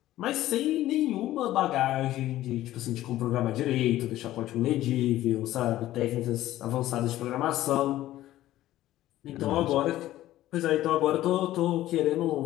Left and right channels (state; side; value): quieter; right; 14.6 dB